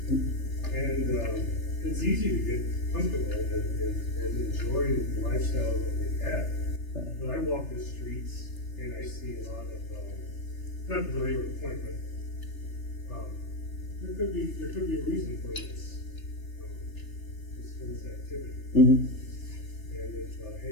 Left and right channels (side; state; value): right; late; 3.3 ms